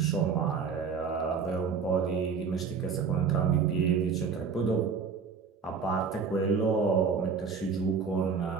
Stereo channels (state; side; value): quieter; left; 5.8 dB